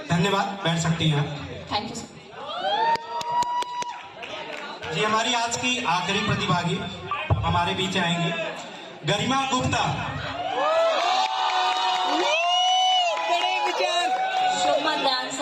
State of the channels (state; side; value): identical; both; correlation 1.00